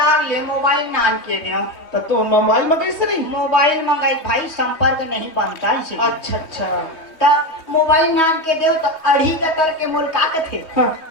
ले मोबाइल नान के दियो तो तू मोबाइल में कैसे नहीं? मोबाइल मंगाई भाई संपर्क नहीं बनता इसे अच्छा अच्छा तब मोबाइल नान के दो तो अढ़ी कतर के मोल का कथे हाँ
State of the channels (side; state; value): right; late; 3.2 ms